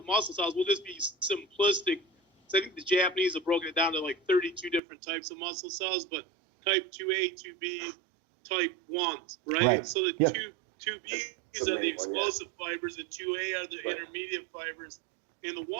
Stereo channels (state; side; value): drops out; left; at 4.8 s